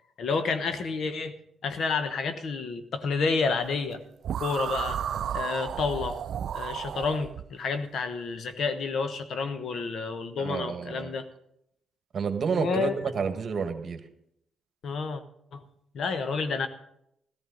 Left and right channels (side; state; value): both; normal; correlation 0.71